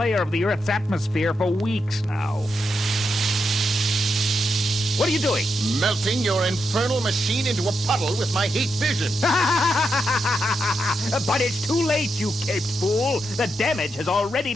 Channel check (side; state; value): both; normal; correlation 0.84